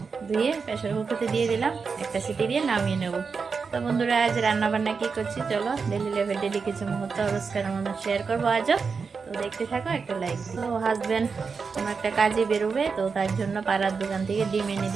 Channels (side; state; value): left; quieter; 5.2 dB